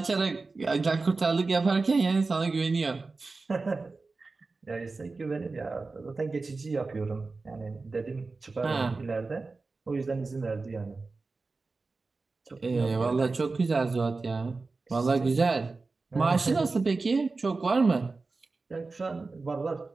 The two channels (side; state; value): left; quieter; 3.8 dB